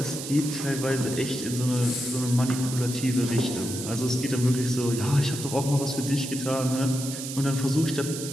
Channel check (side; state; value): right; noise; hiss, 8 dB below the sound